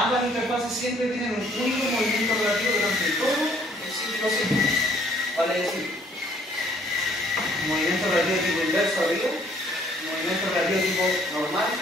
interfaces siempre tienen un único movimiento relativo durante todo el ciclo sísmico. Vale decir, un movimiento relativo tipo inverso arriba, un movimiento relativo tipo normal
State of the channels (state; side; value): normal; both; correlation 0.62